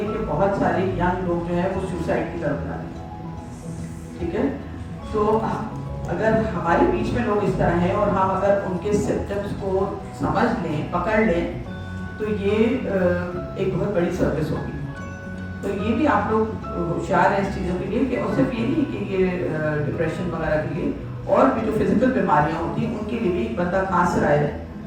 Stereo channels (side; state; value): both; identical; correlation 1.00